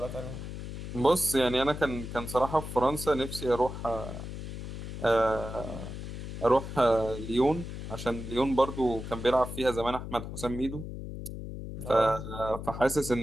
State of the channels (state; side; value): noise; left; hum, 8 dB below the sound